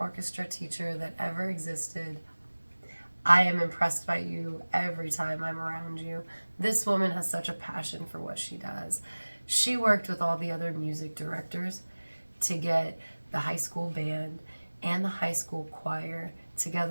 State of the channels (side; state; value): both; inverted; correlation -1.00